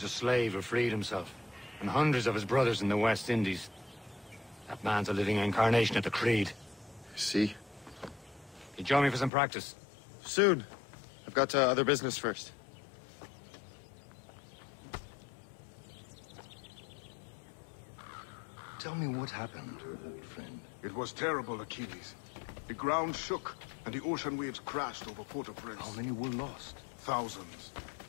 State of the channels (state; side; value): drops out; right; at 9.3 s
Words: a slave who freed himself, and hundreds of his brothers in the West Indies. That man's a living incarnation of the Creed. See? He join me for some practice. Soon. I've got other business first. Tell me what happened, old friend. It was terrible, Achilles. The ground shook, and the ocean waves crashed over Port-au-Prince. How many were lost? Thousands.